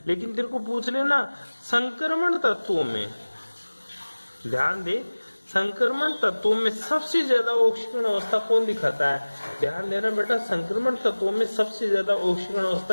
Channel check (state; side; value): inverted; both; correlation -1.00